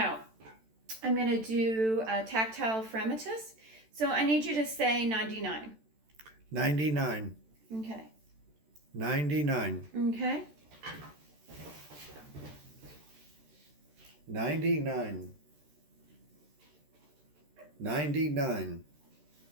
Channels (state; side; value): late; left; 13 ms